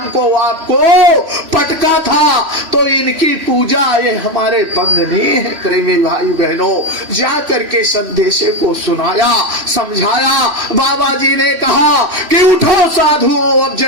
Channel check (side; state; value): left; late; 3.0 ms